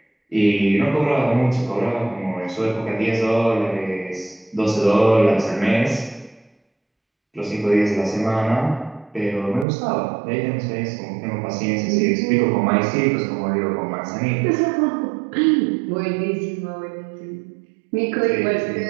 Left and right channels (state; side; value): drops out; left; at 9.7 s